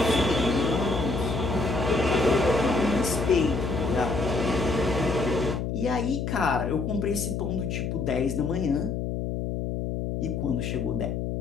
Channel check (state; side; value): noise; left; hum, 2 dB below the sound